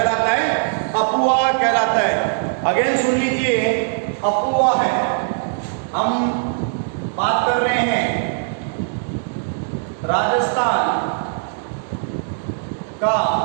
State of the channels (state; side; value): silent; left; digital silence